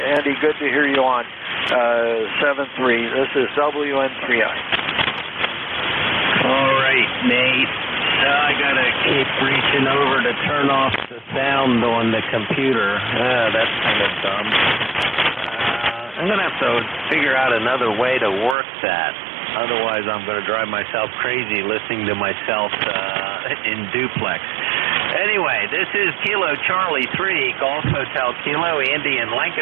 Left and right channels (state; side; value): drops out; left; at 18.6 s